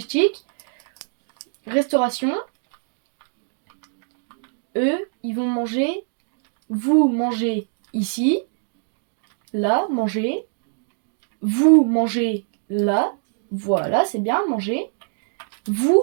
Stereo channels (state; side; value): silent; left; digital silence